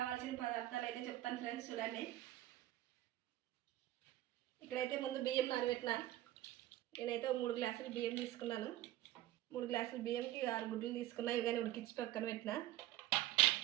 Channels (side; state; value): left; quieter; 14.9 dB